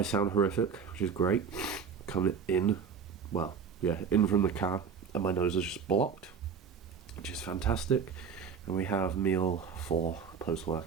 sound horrific, which is great. Coming in, well, yeah, in from the car, and my nose is just blocked, which is fantastic. And we have meal 4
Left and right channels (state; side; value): quieter; left; 6.4 dB